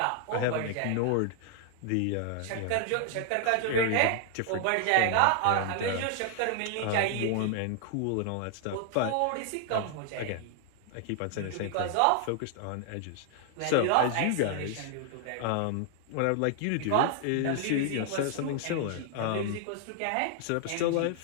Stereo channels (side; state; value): both; different; correlation 0.00